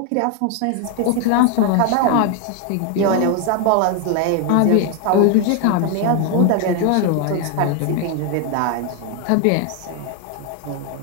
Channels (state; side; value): different; both; correlation 0.01